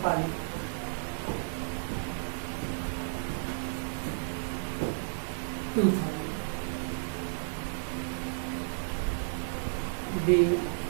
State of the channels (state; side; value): silent; left; digital silence